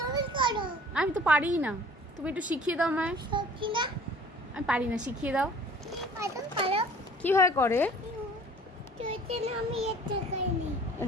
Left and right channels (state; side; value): normal; both; correlation 0.50